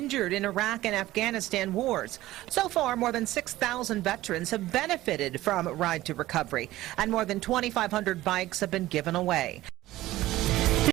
in Iraq and Afghanistan wars. So far, more than 6,000 veterans have benefited from Ride to Recovery, and more than 2,500 bikes have been given away.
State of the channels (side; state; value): left; quieter; 16.2 dB